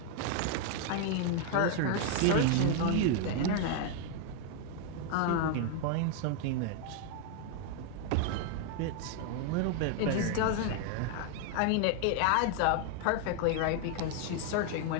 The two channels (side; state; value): both; different; correlation 0.00